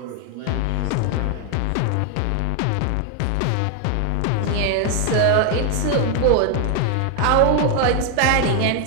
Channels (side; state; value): both; different; correlation 0.00